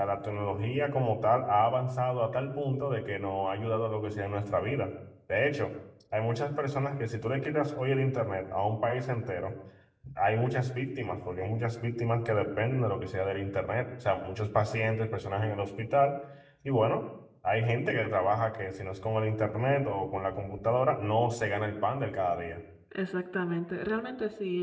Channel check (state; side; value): identical; both; correlation 1.00